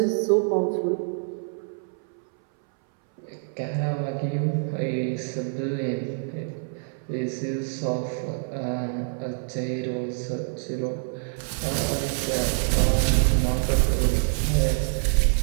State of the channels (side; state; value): left; silent; 61 dB below the other